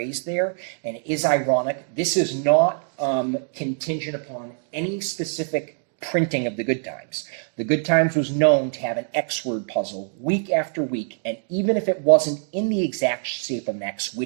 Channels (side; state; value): left; silent; 63 dB below the other